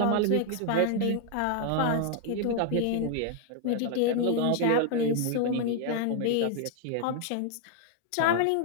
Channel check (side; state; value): both; different; correlation 0.00